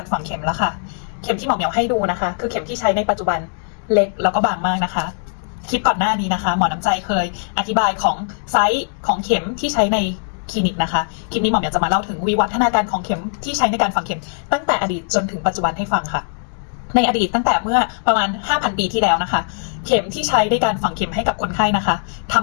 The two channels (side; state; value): right; silent; digital silence